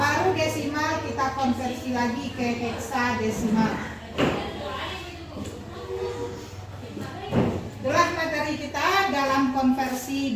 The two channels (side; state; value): both; identical; correlation 1.00